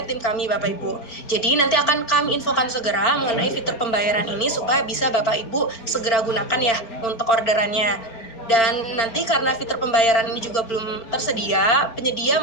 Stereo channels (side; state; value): right; late; 4.4 ms